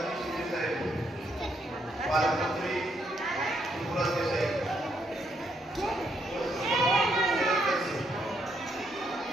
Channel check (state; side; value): normal; both; correlation 0.75